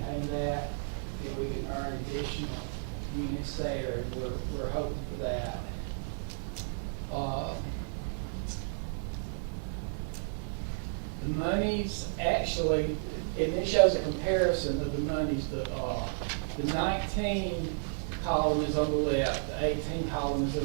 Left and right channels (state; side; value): silent; left; digital silence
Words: that, then we can earn additional units there, and we're hoping for that. The monies actually, and it shows a comparison of the monies. The 19 column is on the left, the 18 column is